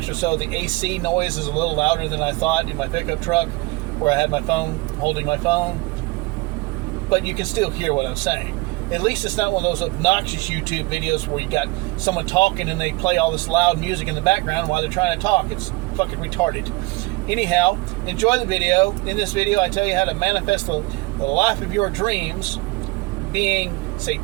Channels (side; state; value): left; quieter; 23.9 dB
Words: or so, the AC noise is a little louder than I thought in my pickup truck where I had my phone, holding my phone. But you can still hear what I'm saying. At least it's not one of those obnoxious YouTube videos where you got someone talking and they play all this loud music in the background while they're trying to talk. It's fucking retarded. Anyhow, enjoy the video. In this video, I tell you how to manifest the life of your dreams being